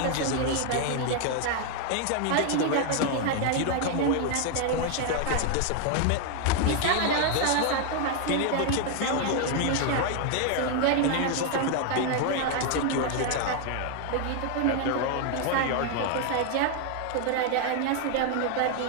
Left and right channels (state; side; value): different; both; correlation 0.00